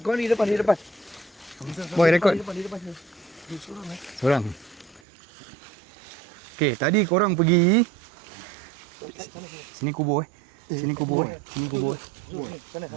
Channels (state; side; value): drops out; left; at 5.0 s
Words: kau di depan. Boy record. Di depan sini. Seorang. Okay, tadi korang pergi sini kubur Sini kubur Sana.